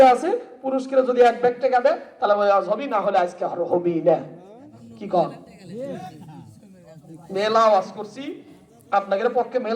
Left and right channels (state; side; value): identical; both; correlation 1.00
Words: আছে, পুরুষকেরা যদি 1 ব্যাগ টাকা দেয় তাহলে ওই ওয়াজ হবি, না হলে আজকে আর হবি না। কি কর? মেলা ওয়াজ করছি, আপনাদের পক্ষে